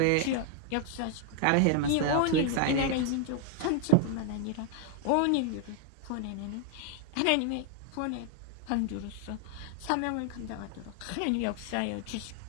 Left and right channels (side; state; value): both; different; correlation 0.00